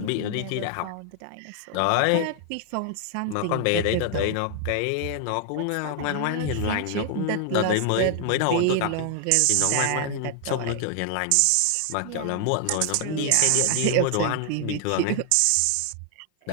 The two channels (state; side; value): different; both; correlation 0.00